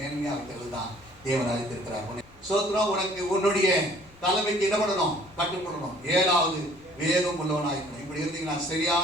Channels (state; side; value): noise; left; rumble, 26 dB below the sound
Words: வைக்கிறது தான் தேவன் அழைத்திருக்கிறார். சோத்ரம். உனக்கு உன்னுடைய தலைமைக்கு என்ன பண்ணணும், கட்டுப்படணும். 7வது வேகம் உள்ளவனாயிருக்கணும். இப்படி இருந்தீங்கன்னா